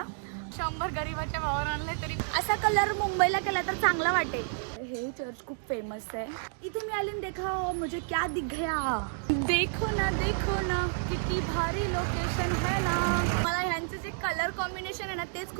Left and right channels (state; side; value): silent; left; digital silence